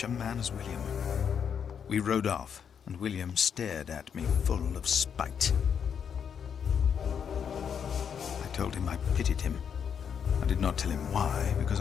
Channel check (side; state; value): right; quieter; 7.5 dB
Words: a man as William. We rode off, and William stared at me full of spite. I told him I pitied him. I did not tell him why, because